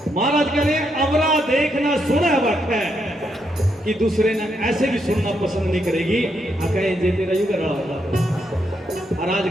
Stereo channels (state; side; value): normal; both; correlation 0.79